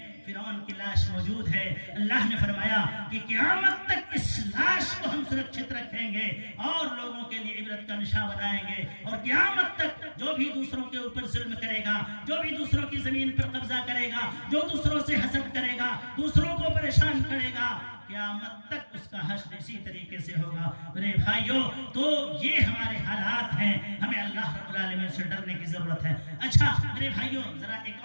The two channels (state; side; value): inverted; both; correlation -1.00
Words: فرعون کی لاش موجود ہے. اللہ نے فرمایا کہ قیامت تک اس لاش کو ہم سرکشت رکھیں گے اور لوگوں کے لیے عبرت کا نشان بنائیں گے. اور قیامت تک جو بھی دوسروں کے اوپر ظلم کرے گا، جو بھی دوسروں کی زمین پر قبضہ کرے گا، جو دوسروں سے حسد کرے گا، دوسروں کو پریشان کرے گا، قیامت تک اس کا حشر اسی طریقے سے ہوگا. میرے بھائیوں، تو یہ ہمارے حالات ہیں، ہمیں اللہ رب العالمین سے ڈرنے کی ضرورت ہے. اچھا میرے بھائیوں، ذرا